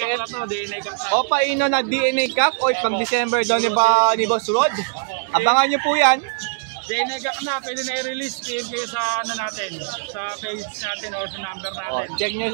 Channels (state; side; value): silent; left; 65 dB below the other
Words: na to, DNA Cup na. Opa Ino na DNA Cup o pag December daw ni Boss Rod. Abangan nyo po yan. DNA Cup na, pwede na i-release. PM kayo sa natin, sa page natin or sa number O, natin. check nyo